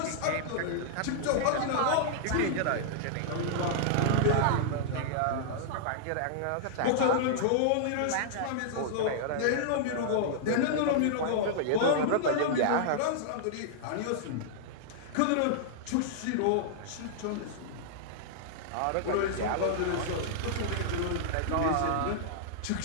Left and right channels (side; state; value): both; different; correlation -0.01